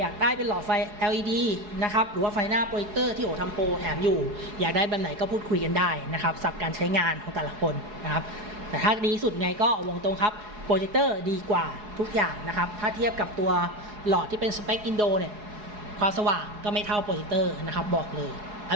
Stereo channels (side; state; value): left; late; 4.8 ms